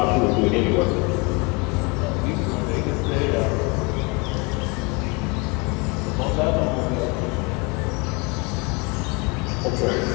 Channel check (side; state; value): right; quieter; 28.3 dB